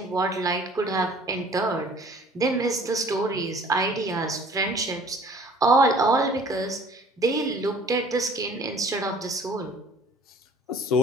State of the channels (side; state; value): both; normal; correlation 0.52